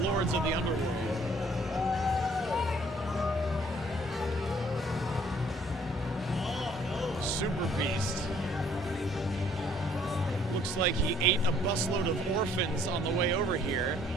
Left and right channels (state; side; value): normal; both; correlation 0.61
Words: of the Underworld. Super Beast. Looks like he ate a busload of orphans on the way over here.